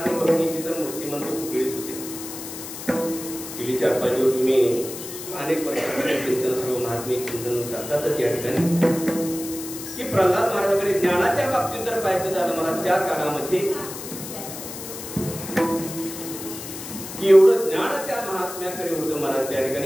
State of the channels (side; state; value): left; noise; hiss, 10 dB below the sound